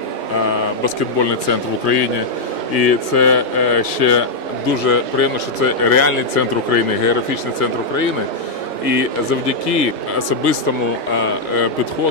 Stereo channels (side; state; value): right; quieter; 3.0 dB